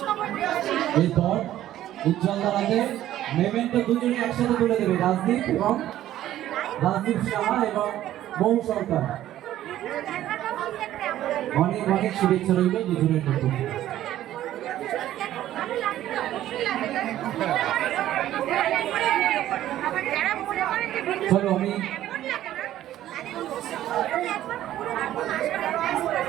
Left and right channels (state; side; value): quieter; left; 13.0 dB